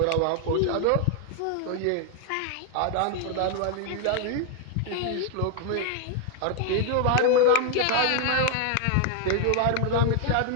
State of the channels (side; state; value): both; different; correlation 0.00